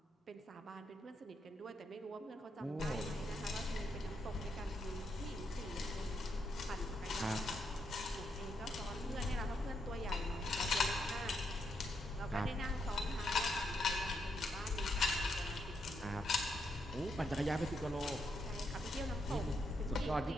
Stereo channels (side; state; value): both; normal; correlation 0.79